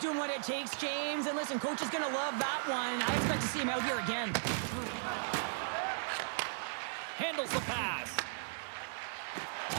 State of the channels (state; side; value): silent; left; 53 dB below the other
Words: what it takes, James. And listen, coach is going to love that one. I expect to see him out here again. Handles the pass.